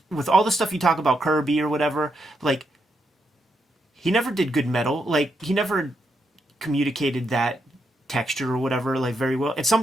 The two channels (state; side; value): normal; both; correlation 0.80